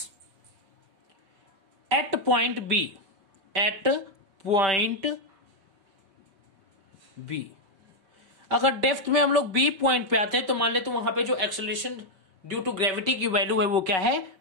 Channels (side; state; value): left; late; 5.2 ms